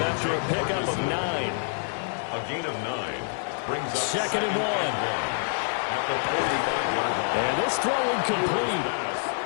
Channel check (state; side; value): silent; right; digital silence